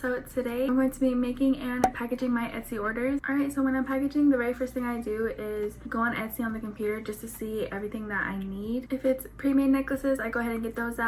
today I'm going to be making and packaging my Etsy orders. Alright, so when I'm packaging, the very first thing I do is go on Etsy on the computer just to see everything that I need. If it's pre-made necklaces, I go ahead and get those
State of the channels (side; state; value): both; identical; correlation 1.00